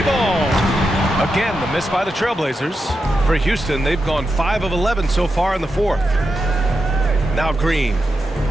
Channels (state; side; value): normal; both; correlation 0.87